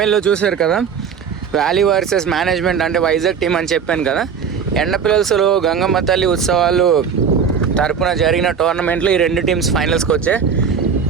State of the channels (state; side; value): quieter; left; 6.8 dB